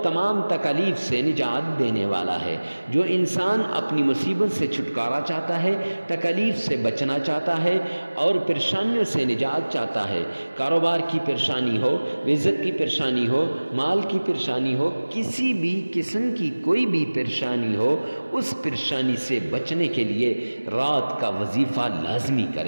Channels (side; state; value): both; inverted; correlation -1.00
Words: تمام تکالیف سے نجات دینے والا ہے۔ جو انسان اپنی مصیبت سے چھٹکارا چاہتا ہے، تکالیف سے بچنا چاہتا ہے اور پریشانیوں سے نجات چاہتا ہے، کاروبار کی پریشانی ہو، رزق کی پریشانی ہو، مال کی پریشانی ہو، کسی بھی قسم کی کوئی بھی پریشانی ہو، اس پریشانی سے بچنے کے لیے رات کا وظیفہ لازمی